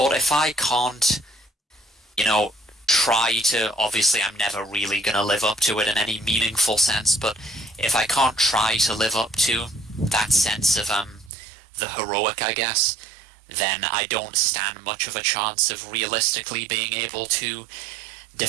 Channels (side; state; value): left; drops out; at 11.3 s